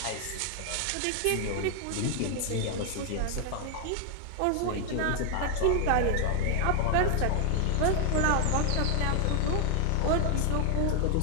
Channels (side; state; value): both; different; correlation 0.00